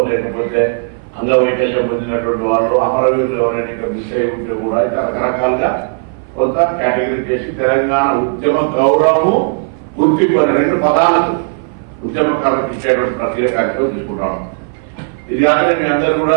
లేకపోతే అంగవైకల్యం పొందినటువంటి వాళ్ళు, అమరవీరులు ఎవరైనా మిస్ అయి ఉంటే కూడా రకరకాలుగా కొంత కేటగిరీ చేసి తెలంగాణ ఉద్యమ గౌరవము, గుర్తింపు 2 పదాలకు ఉద్యమకారులకు ఇచ్చేటువంటి ప్రక్రియ కార్యక్రమం తీసుకుంటాము. ఇది కాక మీ అందరూ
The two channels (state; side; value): silent; left; 59 dB below the other